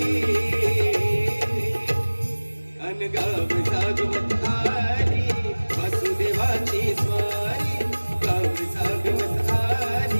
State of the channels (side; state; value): both; inverted; correlation -1.00